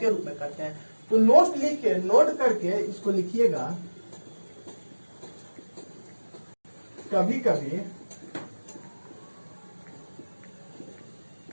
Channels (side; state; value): both; inverted; correlation -1.00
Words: रूप में करते हैं। तो नोट करके इसको लिखिएगा। कभी कभी